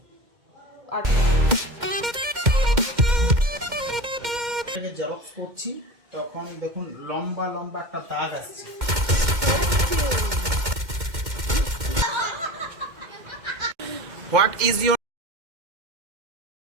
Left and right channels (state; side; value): late; left; 2.1 ms